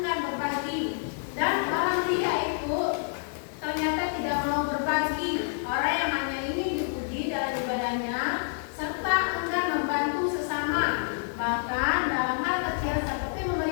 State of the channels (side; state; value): right; silent; digital silence